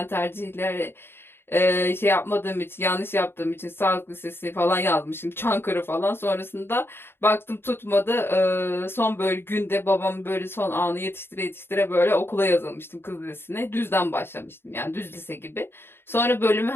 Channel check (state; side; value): late; right; 0.11 ms